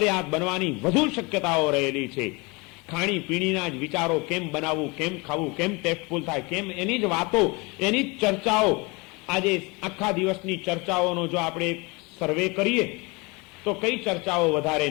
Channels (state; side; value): quieter; right; 27.2 dB